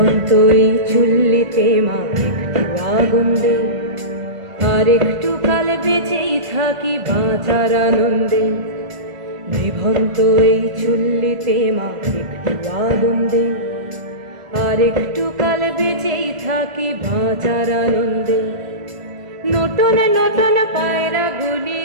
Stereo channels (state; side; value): late; left; 1.5 ms